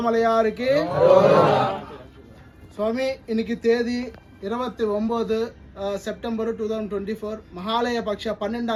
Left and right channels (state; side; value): identical; both; correlation 1.00